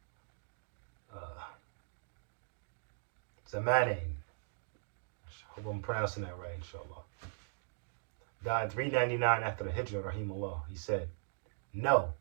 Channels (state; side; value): silent; left; digital silence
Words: Zamanain, I hope I'm pronouncing that right, inshallah, died 399 after the Hijrah, rahimahullah. He said, "No,